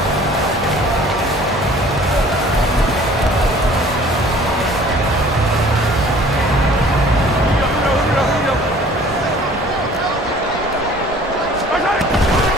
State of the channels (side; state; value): both; normal; correlation 0.51